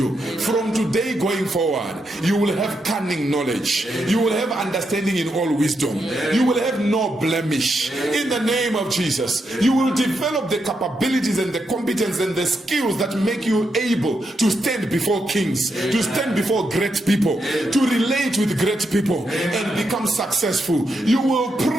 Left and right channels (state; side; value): normal; both; correlation 0.82